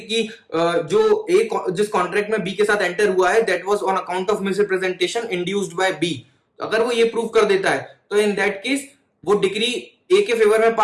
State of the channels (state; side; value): identical; both; correlation 1.00